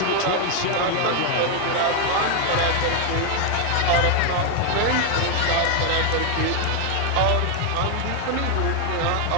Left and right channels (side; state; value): both; different; correlation 0.01